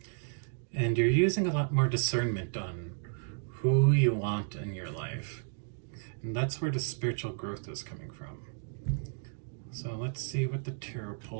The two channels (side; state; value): left; silent; digital silence